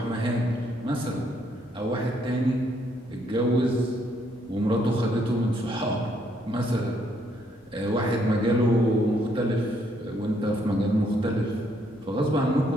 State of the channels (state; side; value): normal; both; correlation 0.71